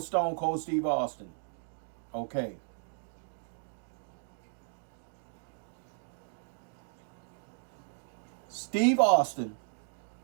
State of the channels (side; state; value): left; silent; 55 dB below the other